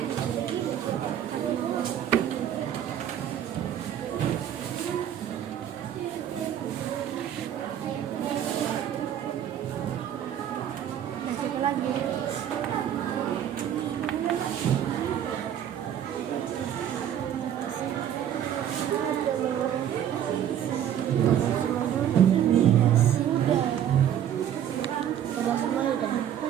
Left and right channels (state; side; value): quieter; left; 10.2 dB